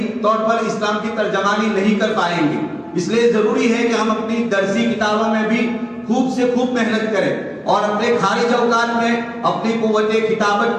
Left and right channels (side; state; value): both; identical; correlation 1.00